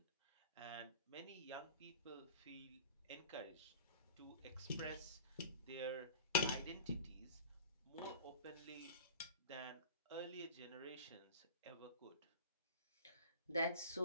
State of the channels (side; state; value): both; inverted; correlation -0.37